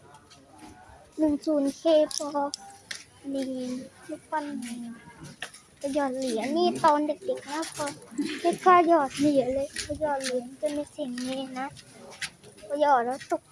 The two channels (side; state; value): both; identical; correlation 1.00